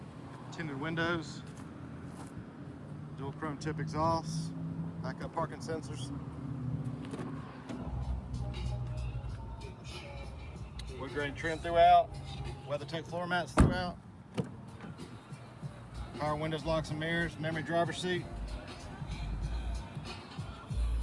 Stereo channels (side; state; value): both; identical; correlation 1.00